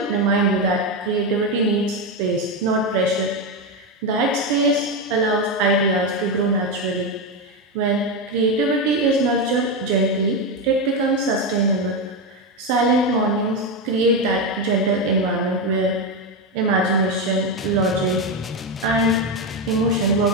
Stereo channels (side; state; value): both; normal; correlation 0.11